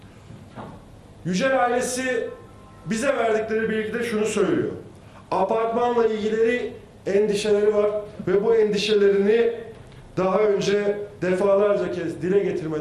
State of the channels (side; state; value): both; identical; correlation 1.00